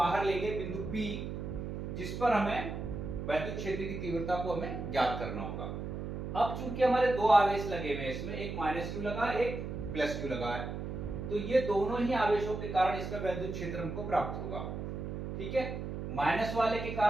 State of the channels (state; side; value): noise; right; hum, 5 dB below the sound